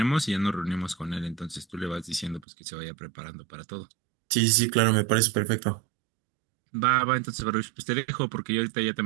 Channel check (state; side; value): drops out; left; at 2.5 s